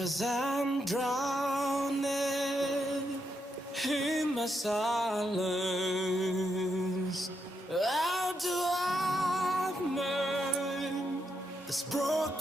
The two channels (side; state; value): both; normal; correlation 0.81